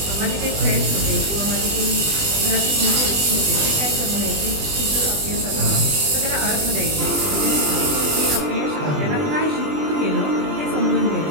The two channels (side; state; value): left; late; 20 ms